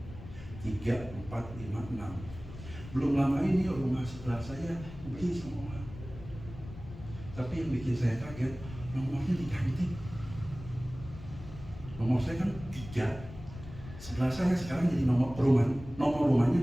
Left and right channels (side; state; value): left; noise; rumble, 14 dB below the sound